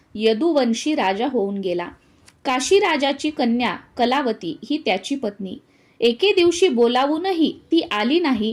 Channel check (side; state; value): both; identical; correlation 1.00